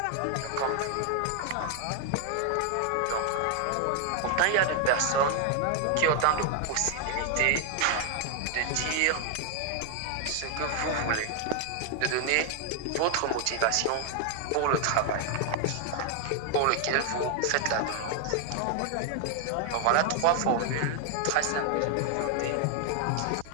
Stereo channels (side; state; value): both; different; correlation 0.00